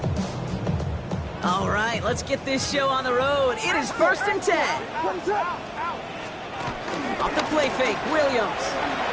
All right, let's get this show on the road. It is 1st and 10. Off the play fake, Williams.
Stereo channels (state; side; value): identical; both; correlation 1.00